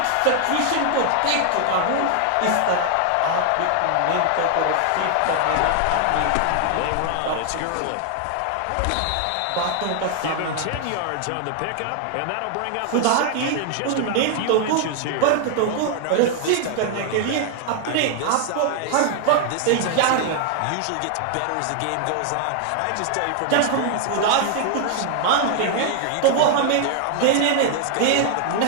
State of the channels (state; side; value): different; both; correlation 0.00